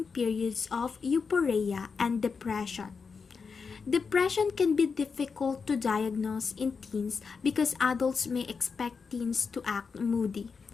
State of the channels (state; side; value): quieter; right; 5.3 dB